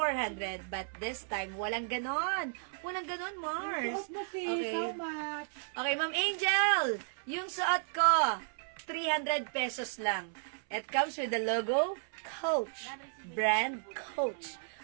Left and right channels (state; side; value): silent; left; 55 dB below the other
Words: but this time, walang ganon. Walang ganon, Mars. Okay. So much. Okay, Ma'am Angel, yung suot ko, 300 pesos lang. It comes with the logo, Coach. Brand Coach.